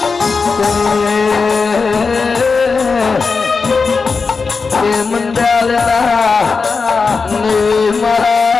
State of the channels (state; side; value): quieter; right; 4.7 dB